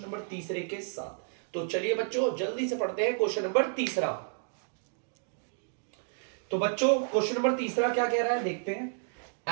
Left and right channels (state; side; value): silent; left; digital silence